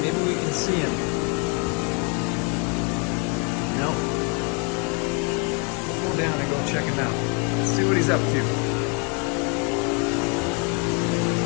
we can see him. Nope. We'll go down and go check him out. Let's see what he's up to.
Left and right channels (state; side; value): quieter; right; 35.4 dB